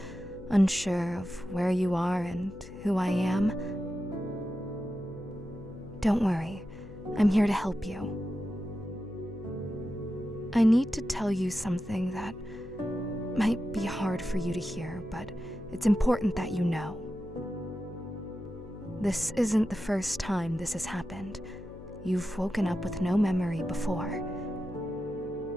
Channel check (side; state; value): left; noise; hum, 16 dB below the sound